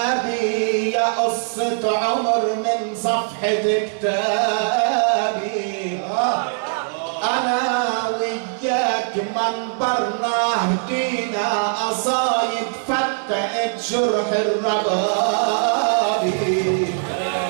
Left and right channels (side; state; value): left; silent; digital silence